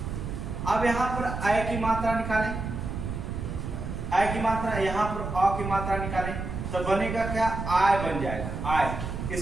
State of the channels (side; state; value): right; noise; rumble, 5 dB below the sound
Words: अब यहां पर आय की मात्रा निकालें, आय की मात्रा, यहां पर अ की मात्रा निकालें तो बनेगा क्या, आय बन जाएगा आय।